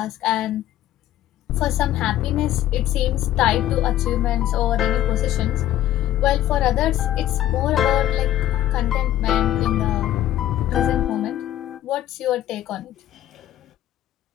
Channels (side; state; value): right; quieter; 12.9 dB